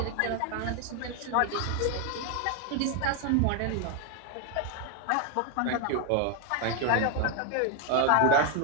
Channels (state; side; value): different; both; correlation 0.01